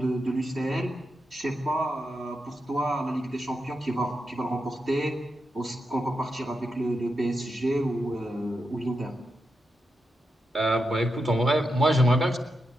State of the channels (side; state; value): both; normal; correlation 0.86